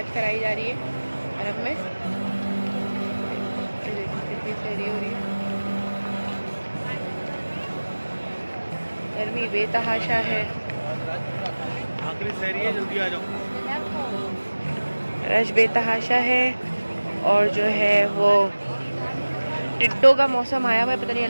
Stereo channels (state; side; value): inverted; both; correlation -1.00